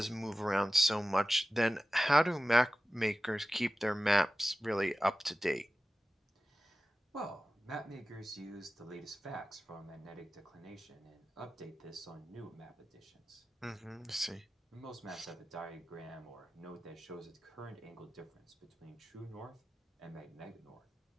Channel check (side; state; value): both; normal; correlation 0.95